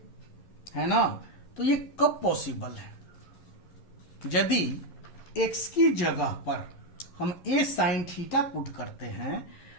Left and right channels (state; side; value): late; right; 11 ms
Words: है ना। तो ये कब पॉसिबल है, यदि x की जगह पर हम a साइन थीटा पुट करते हैं